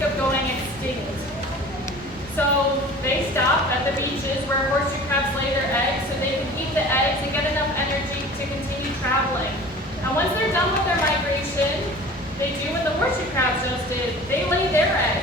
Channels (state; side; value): noise; right; rumble, 21 dB below the sound